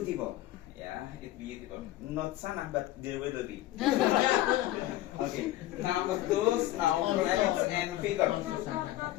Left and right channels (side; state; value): right; quieter; 15.4 dB